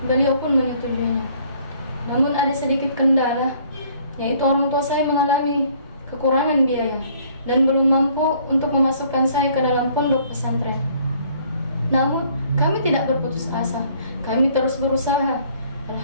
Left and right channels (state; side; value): inverted; both; correlation -0.60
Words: beliau pun menyetujuinya. Namun ada sedikit kendala, yaitu orang tua saya mengalami kekurangan biaya dan belum mampu untuk memasukkan saya ke dalam pondok pesantren. Namun kami tidak berputus asa, kami terus berusaha.